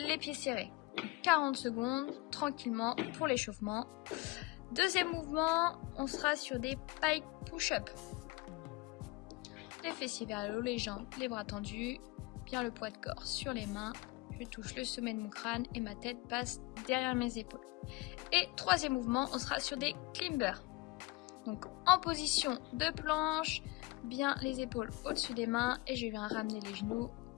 pieds serrés. 40 secondes, tranquillement, pour l'échauffement. Deuxième mouvement, on sera sur des pike push-up. Les fessiers vers le haut, les jambes, les bras tendus, bien le poids de corps sur les mains. Je touche le sommet de mon crâne et ma tête passe derrière mes épaules. Et troisième mouvement, on sera sur des climbers. Donc en position de planche, bien les épaules au-dessus des mains et je viens ramener les genoux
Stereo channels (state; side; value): quieter; right; 23.1 dB